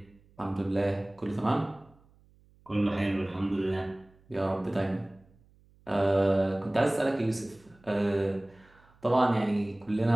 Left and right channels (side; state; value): right; noise; hum, 30 dB below the sound